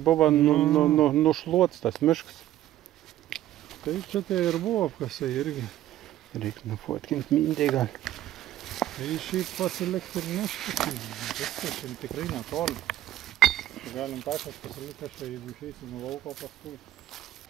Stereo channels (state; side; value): quieter; left; 13.3 dB